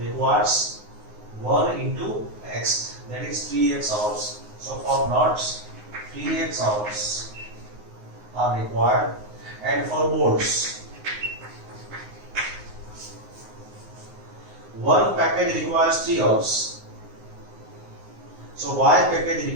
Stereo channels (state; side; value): late; left; 9.5 ms